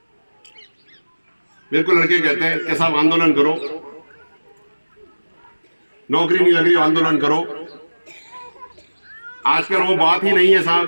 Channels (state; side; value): inverted; both; correlation -1.00